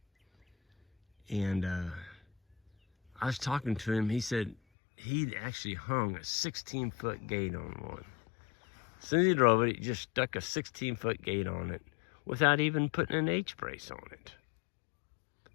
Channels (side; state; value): right; drops out; at 4.5 s